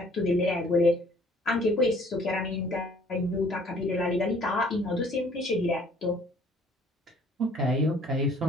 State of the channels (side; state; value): both; normal; correlation 0.57